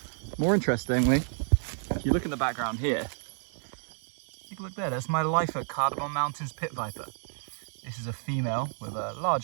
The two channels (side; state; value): left; silent; digital silence